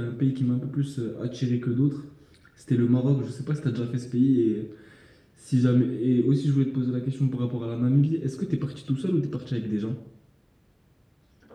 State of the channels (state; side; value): identical; both; correlation 1.00